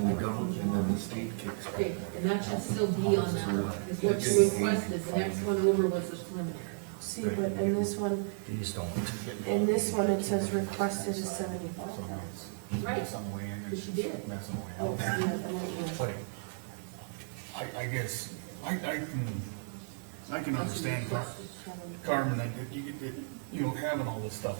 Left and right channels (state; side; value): silent; left; 55 dB below the other